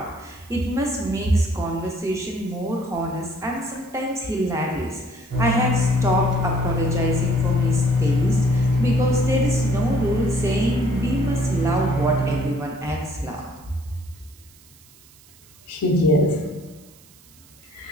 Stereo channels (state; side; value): noise; right; hiss, 26 dB below the sound